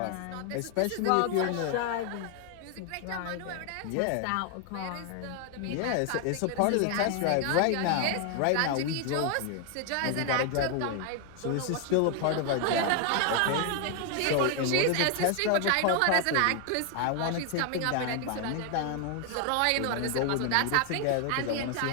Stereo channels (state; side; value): different; both; correlation 0.00